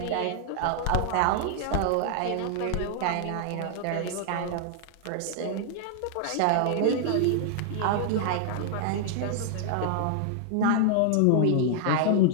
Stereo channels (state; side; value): different; both; correlation 0.00